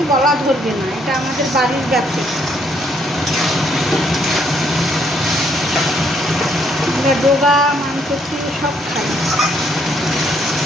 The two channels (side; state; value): both; normal; correlation 0.70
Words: গলা ধরবে না, এটা আমাদের বাড়ির গাছে। আমরা ডোগা মানকচি সব খাই।